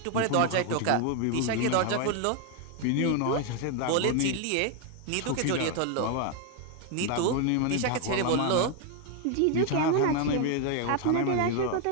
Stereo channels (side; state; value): both; different; correlation 0.01